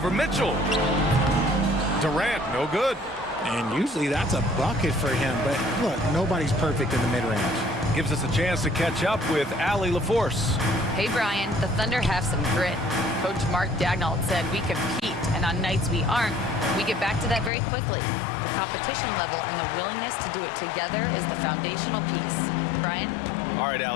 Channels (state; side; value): drops out; right; at 17.5 s